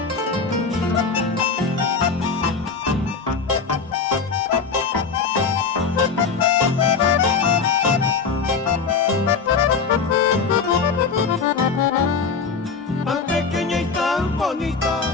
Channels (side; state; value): right; quieter; 5.3 dB